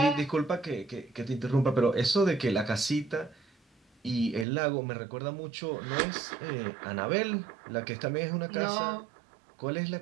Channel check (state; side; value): drops out; left; at 4.5 s